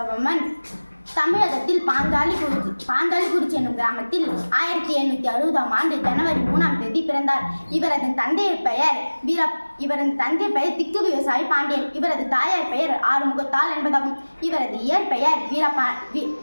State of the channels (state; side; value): inverted; both; correlation -1.00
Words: தமிழகத்தில் பாஞ்சாலிக்குறிச்சி என்னும் கிராமத்தில் 1860ஆம் ஆண்டு ஜனவரி 3ஆம் தேதி பிறந்தார். இவரது தந்தையர் பெயர் திக்கு விவசாயி பாண்டியன். இவரது தாயார் பெயர் ஆறுமுகத்தாள் என்பதாகும். இவரது இயற்பெயர்